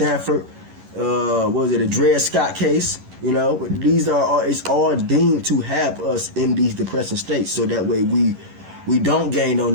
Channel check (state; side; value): late; left; 11 ms